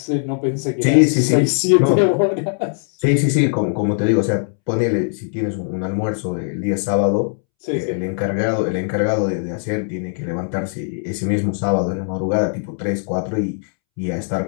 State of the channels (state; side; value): silent; right; 66 dB below the other